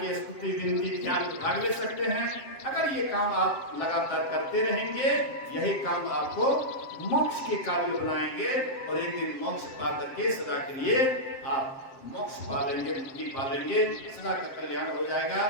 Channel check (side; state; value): right; late; 7.6 ms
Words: के स्तुति विनती ध्यान में भाग ले सकते हैं। अगर ये काम आप लगातार करते रहेंगे, यही काम आपको मोक्ष के काबिल बनाएंगे, और एक दिन मोक्ष पा करके सदा के लिए आप मोक्ष पा लेंगे, मुक्ति पा लेंगे, सदा का कल्याण हो जाएगा।